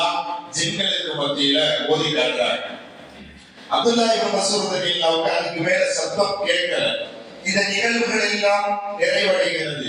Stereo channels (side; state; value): both; identical; correlation 1.00